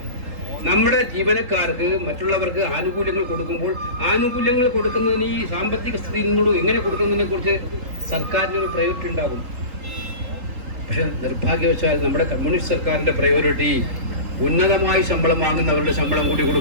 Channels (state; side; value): late; left; 3.8 ms